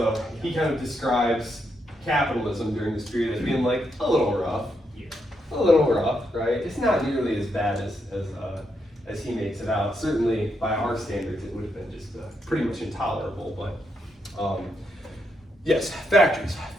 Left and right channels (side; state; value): both; normal; correlation 0.80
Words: he kind of describes capitalism during this period as being like a little rough. Yeah. A little rough, right? It's not nearly as bad as he makes it out. Certainly by our standards it would have been just pretty much intolerable, but yes,